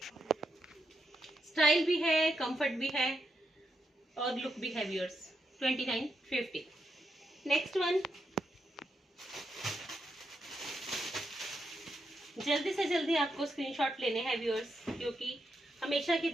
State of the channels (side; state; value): both; normal; correlation 0.83